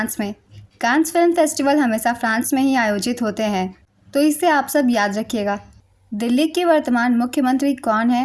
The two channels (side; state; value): both; identical; correlation 1.00